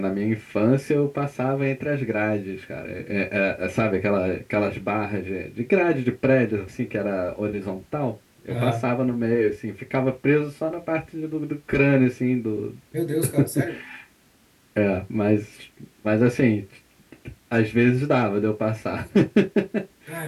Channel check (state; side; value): identical; both; correlation 1.00